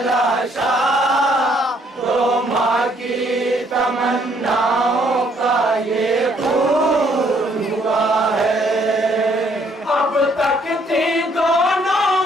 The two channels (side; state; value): both; normal; correlation 0.67